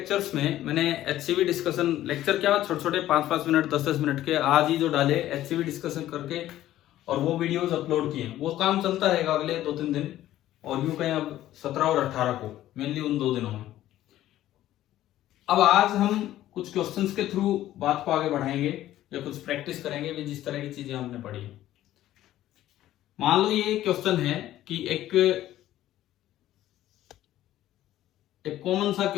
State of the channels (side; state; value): right; quieter; 13.7 dB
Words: में मैंने एचसीवी डिस्कशन लेक्चर क्या छोटे छोटे 5-5 मिनट 10-10 मिनट के आज ही जो डाले एचसीवी डिस्कशन करके और वो वीडियोस अपलोड किए। वो काम चलता रहेगा अगले 2-3 दिन और यूं कहें अब 17 और 18 को मेनली उन 2 दिनों में। अब आज हम कुछ क्वेश्चंस के थ्रू बात को आगे बढ़ाएंगे या कुछ प्रैक्टिस करेंगे भी जिस तरह की चीजें हमने पढ़ी है। मान लो ये क्वेश्चन है कि एक कॉमन सा